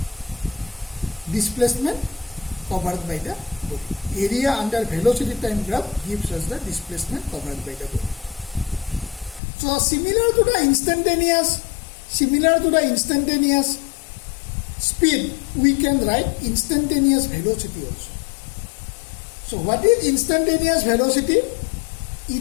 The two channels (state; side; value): drops out; right; at 9.4 s